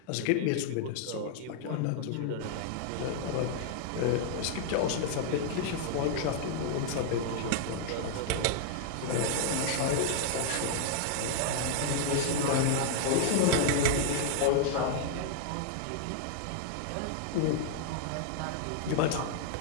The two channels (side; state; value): both; different; correlation -0.01